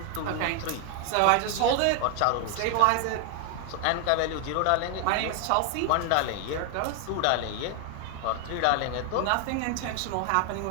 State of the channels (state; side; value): different; both; correlation 0.01